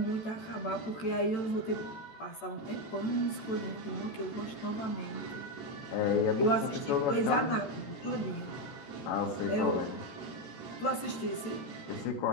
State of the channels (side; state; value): right; late; 14 ms